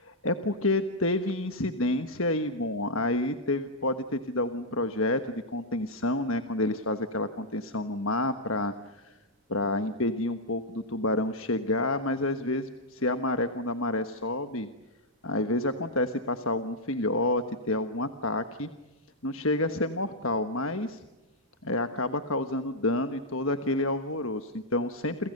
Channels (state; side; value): normal; both; correlation -0.05